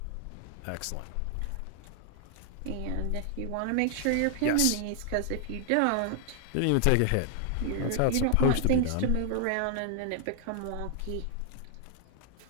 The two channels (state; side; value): different; both; correlation 0.00